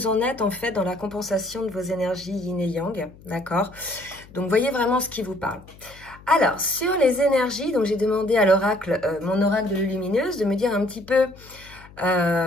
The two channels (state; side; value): noise; left; hum, 22 dB below the sound